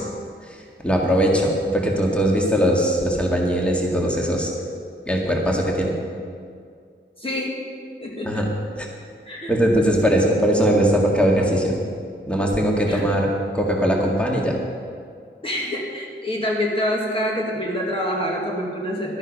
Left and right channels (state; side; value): normal; both; correlation 0.63